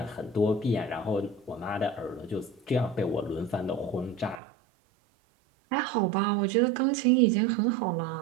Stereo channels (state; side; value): drops out; left; at 4.4 s